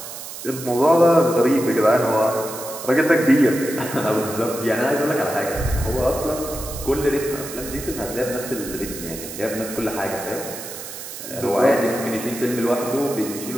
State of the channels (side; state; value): right; noise; hiss, 11 dB below the sound